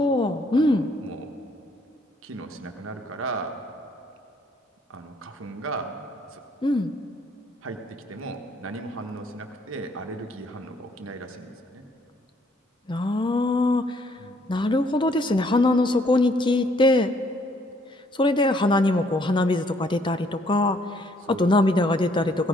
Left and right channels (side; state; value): both; normal; correlation 0.66